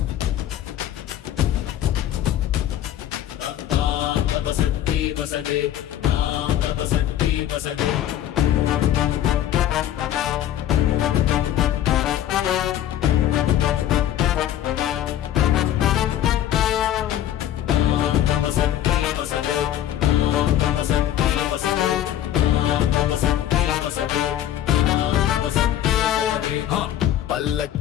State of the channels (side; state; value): right; quieter; 11.7 dB